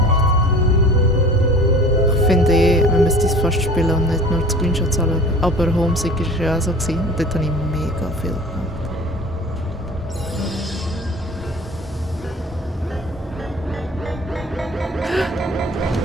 Ich finde man müsste es fast spielen und nicht nur die Screenshots anschauen. Aber Homesick war ja auch so. Gewesen. Und dort habe ich mega viel gemacht.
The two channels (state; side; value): normal; both; correlation 0.43